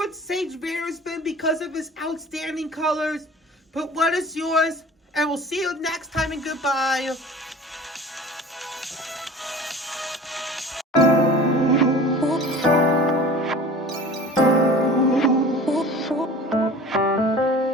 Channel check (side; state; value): both; normal; correlation 0.41